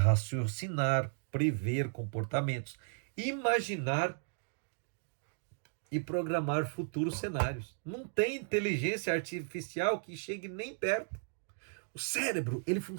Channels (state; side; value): silent; left; digital silence